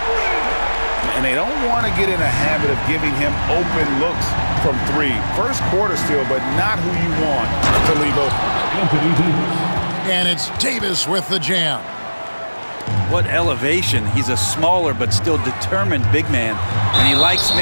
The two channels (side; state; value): both; inverted; correlation -1.00